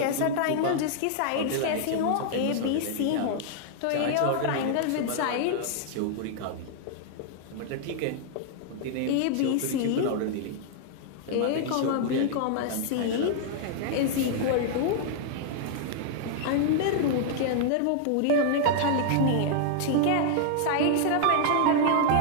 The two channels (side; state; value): both; different; correlation -0.01